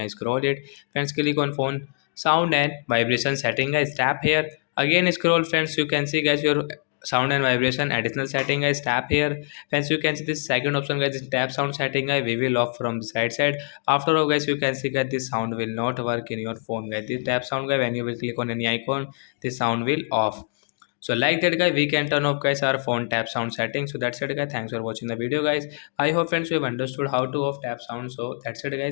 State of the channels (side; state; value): right; silent; digital silence